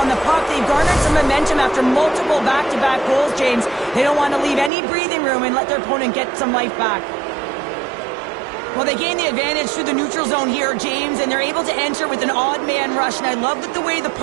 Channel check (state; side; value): drops out; left; at 4.7 s